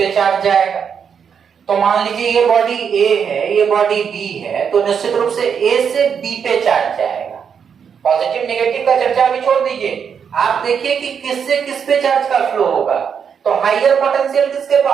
चार्ज जाएगा। तो मान लीजिए ये बॉडी ए है, ये बॉडी बी है, तो निश्चित रूप से ए से बी पे चार्ज जाएगा। पॉजिटिव नेगेटिव का चर्चा अभी छोड़ दीजिए, आप देखिए कि किस से किस पे चार्ज का फ्लो होगा। तो हाइयर पोटेंशियल किसके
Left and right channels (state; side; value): quieter; left; 7.1 dB